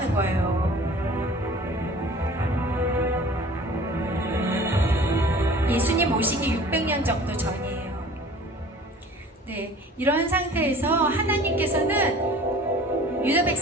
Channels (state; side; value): normal; both; correlation 0.45